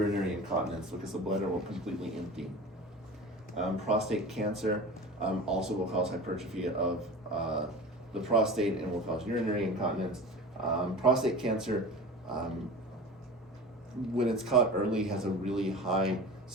incontinence because the bladder will completely empty. Prostate cancer also will cause hypertrophy of the prostate and will cause urinary incontinence. Prostate cancer, when it's caught early, has a really high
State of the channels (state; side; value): normal; both; correlation 0.34